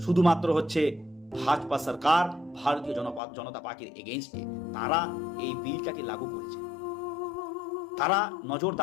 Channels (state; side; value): drops out; right; at 3.2 s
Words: শুধুমাত্র হচ্ছে ভাজপা সরকার, ভারতীয় জনতা পার্টির এগেইনস্টে। তারা এই বিলটাকে লাগু করেছে, তারা